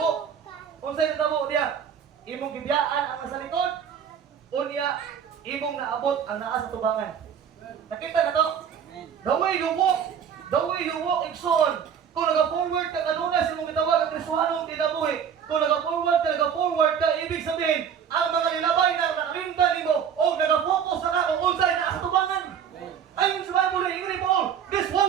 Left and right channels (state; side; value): quieter; left; 8.0 dB